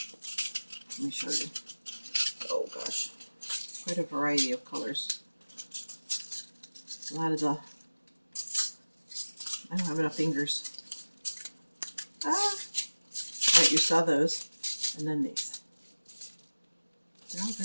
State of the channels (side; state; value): both; inverted; correlation -1.00